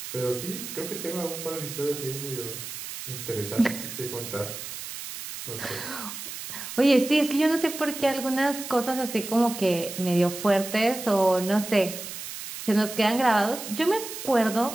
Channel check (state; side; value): noise; right; hiss, 9 dB below the sound